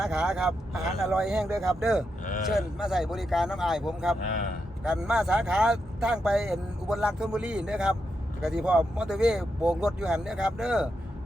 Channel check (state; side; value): normal; both; correlation 0.84